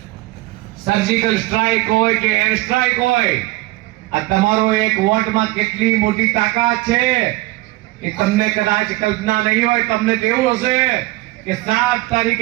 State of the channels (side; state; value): left; quieter; 19.5 dB